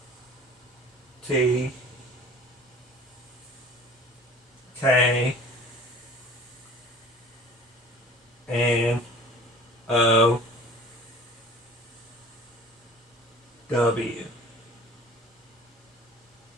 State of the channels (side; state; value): both; normal; correlation 0.46